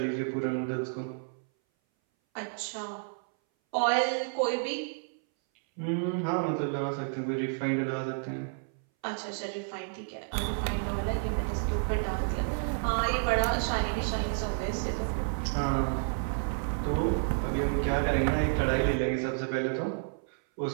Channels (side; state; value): left; silent; 57 dB below the other